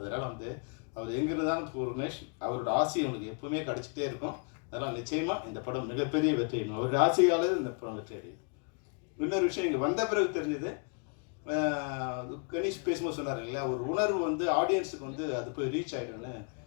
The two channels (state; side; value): quieter; right; 39.0 dB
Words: வந்து அவர் எங்கிருந்தாலும் பூர்ணேஷ் அவரோட ஆசை அவனுக்கு எப்பவுமே கிடச்சிட்டே இருக்கும். அதனால் நிச்சயமாக இந்த படம் மிகப்பெரிய வெற்றி அடையும். அவருடைய ஆசையாளர் இந்த படம் வெற்றி அடையும். இன்னொரு விஷயம் இங்கே வந்த பிறகு தெரிஞ்சது, கணேஷ் பேசும்போது சொன்னார் இல்லையா, ஒரு உணர்வு வந்து ஆடியன்ஸுக்கு வந்து அது போய் ரீச் ஆகிடும்னு.